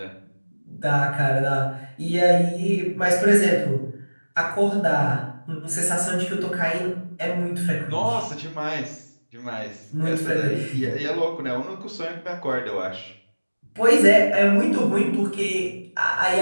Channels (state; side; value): inverted; both; correlation -1.00